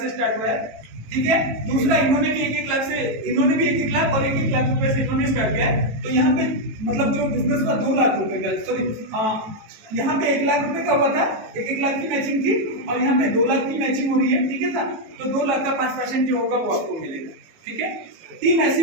स्टार्ट हुआ है। ठीक है, दूसरा इन्होंने भी 1-1 लाख से, इन्होंने भी 1-1 लाख और 1-1 लाख रुपए से इन्होंने स्टार्ट किया है। तो यहाँ पे मतलब जो बिजनेस का 2 लाख रुपए का, सॉरी यहाँ पे 1 लाख रुपए का हुआ था, 1-1 लाख की मैचिंग थी और यहाँ पे 2 लाख की मैचिंग हो रही है। ठीक है ना, तो 2 लाख का 5% जो होगा वो आपको मिलेगा। ठीक है, 3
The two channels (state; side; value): late; left; 19 ms